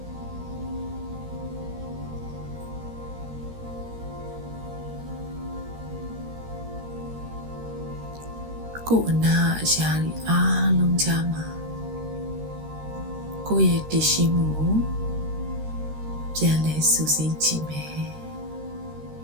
ကိုယ်အနာအရာတွေအားလုံးကြားမှာကိုယ့်ရဲ့တည်ရှိမှုကိုပြန်လဲစူးစိကြည့်မယ်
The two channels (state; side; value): late; left; 13 ms